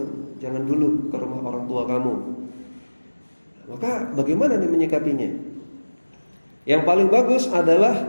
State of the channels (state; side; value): inverted; both; correlation -1.00